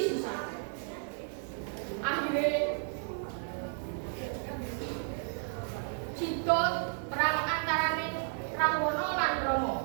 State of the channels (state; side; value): silent; left; 55 dB below the other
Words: sisan. Akhire cidot perang antarane Rahwana lan Rama.